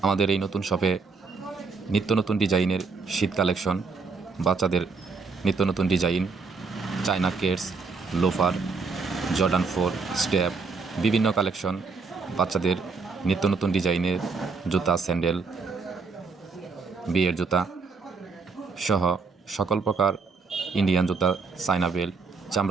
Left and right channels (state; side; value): quieter; left; 4.7 dB